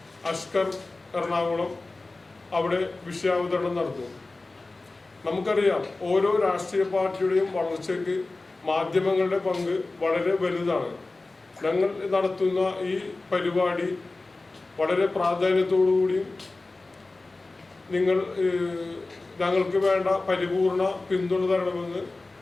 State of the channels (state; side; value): quieter; right; 3.3 dB